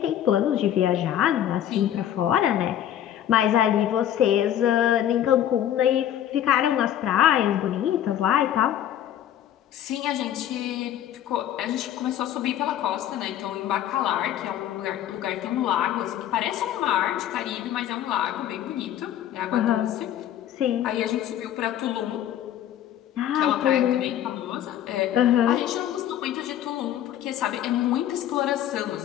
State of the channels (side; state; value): right; quieter; 11.1 dB